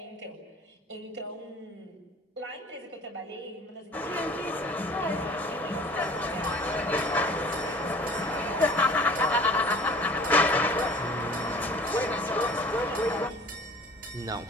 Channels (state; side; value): normal; both; correlation 0.47